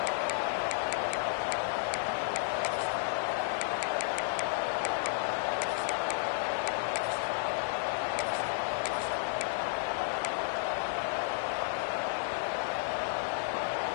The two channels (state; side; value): silent; right; digital silence